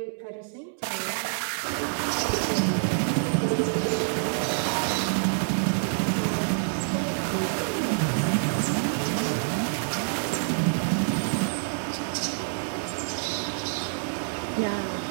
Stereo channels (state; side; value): silent; left; 60 dB below the other